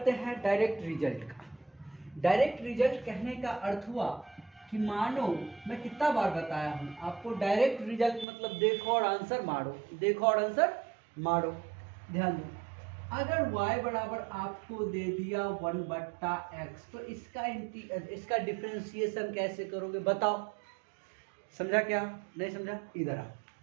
हैं डायरेक्ट रिजल्ट का। डायरेक्ट रिजल्ट कहने का अर्थ हुआ कि मानो, मैं कितना बार बताया हूं आपको, डायरेक्ट रिजल्ट मतलब देखो और आंसर मारो, देखो और आंसर मारो। ध्यान दो, अगर y बराबर आपको दे दिया 1 बट्टा x, तो इसका डिफरेंशिएशन कैसे करोगे बताओ, समझा क्या नहीं समझा, इधर आओ,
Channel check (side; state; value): left; drops out; at 8.2 s